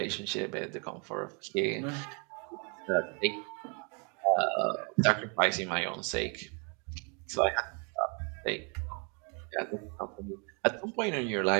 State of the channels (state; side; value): quieter; left; 35.3 dB